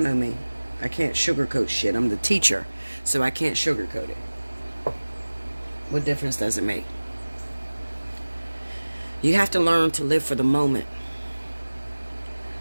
me. I can't sugarcoat shit. I'm the teacher, so I can't sugarcoat it. What difference does it make? You have to learn to live for the moment.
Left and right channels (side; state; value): both; inverted; correlation -1.00